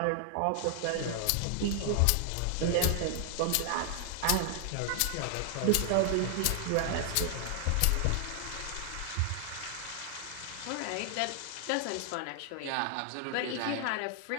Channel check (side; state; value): both; different; correlation 0.00